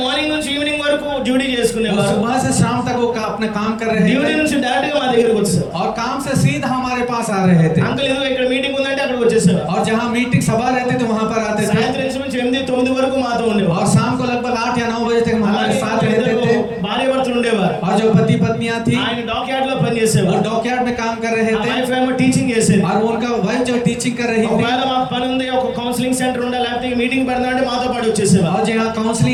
మార్నింగ్ నుంచి ఈవినింగ్ వరకు డ్యూటీ वो చేసుకునేవారు. सुबह से शाम तक वो अपना काम कर रहे డ్యూటీ थे, నుంచి డైరెక్ట్ గా మా దగ్గరికి వచ్చేసారు. और काम से सीधा हमारे पास आ रहे थे। అంకుల్ ఏదో ఇక్కడ మీటింగ్ ఉందంటే అక్కడికి వచ్చేసేవారు. और जहाँ मीटिंग सभा रहते थे वहां पर आते थे, సాయంత్రం నుంచి 8-9 వరకు మాతో ఉండేవారు. और शाम को लगभग 8 या 9 बजे तक हमारे साथ रहते थे। భార్య భర్తలు ఉండేవారు. और जो पति पत्नियां थी ఆయన డాక్యార్డ్ లో वो పనిచేసేవారు. डॉकयार्ड में काम कर रहे थे, వైఫ్ ఏమో టీచింగ్ చేసేది. और उनका वाइफ जो टीचिंग कर रही थी। ఒకవేళ మాకు పని ఉంది, ఒక కౌన్సిలింగ్ సెంటర్ ఉండాలి, లేకపోతే మీటింగ్ పెడదాం అంటే మాతో పాటు వచ్చేసేవారు. और जहाँ काउंसलिंग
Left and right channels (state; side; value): identical; both; correlation 1.00